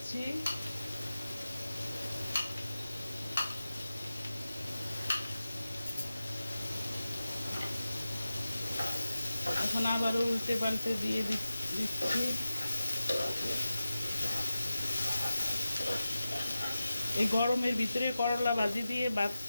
এখন আবারও উল্টে পাল্টে দিয়ে দিচ্ছি। এই গরমের ভিতরে করলা ভাজি দিয়ে ভাত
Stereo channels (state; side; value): inverted; both; correlation -0.94